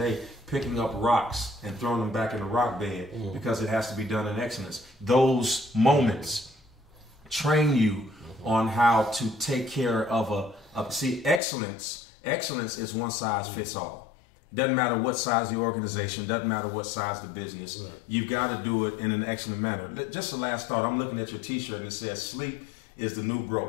picking up rocks and throwing them back in the rock bed because it has to be done in excellence. Those moments train you on how to take care of see, excellence is one size fits all. Doesn't matter what size the organization, doesn't matter what size the business. Right. You've got to do it in an excellent manner. Just the last thought, I'm looking at your t-shirt and it says sleep is the new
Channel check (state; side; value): drops out; right; at 11.4 s